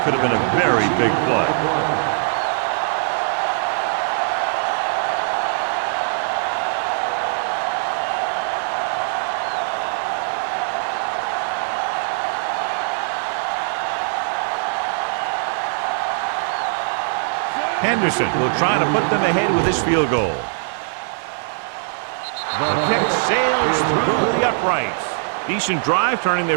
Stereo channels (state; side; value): silent; left; digital silence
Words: could have been a very big play. Henderson will try to put them ahead with his field goal. The kick sails through the uprights. Decent drive, turning